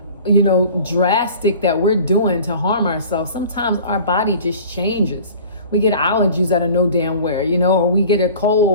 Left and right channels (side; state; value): both; inverted; correlation -0.44